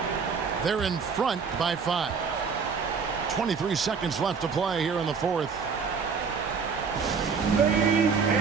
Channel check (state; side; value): quieter; left; 5.7 dB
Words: They're in front by 5. 23 seconds left to play here in the fourth. Ladies